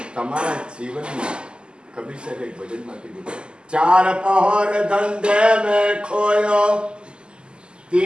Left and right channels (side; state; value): left; late; 0.049 ms